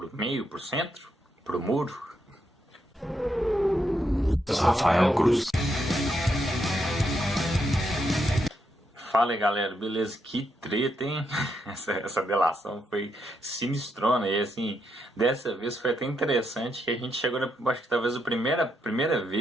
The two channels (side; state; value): both; normal; correlation 0.80